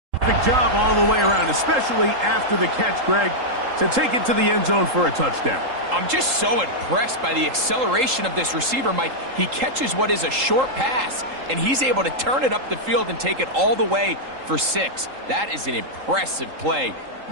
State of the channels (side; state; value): left; late; 3.8 ms